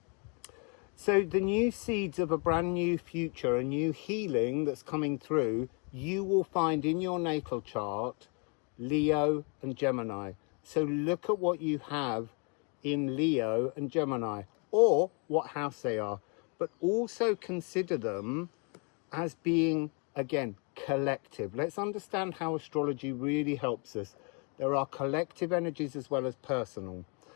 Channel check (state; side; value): quieter; right; 35.7 dB